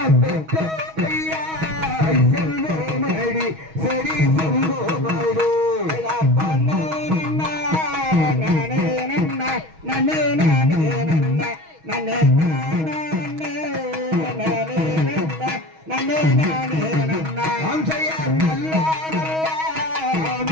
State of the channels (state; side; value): late; left; 6.3 ms